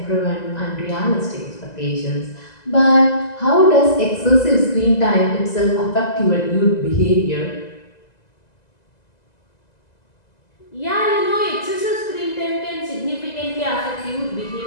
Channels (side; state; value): right; late; 2.0 ms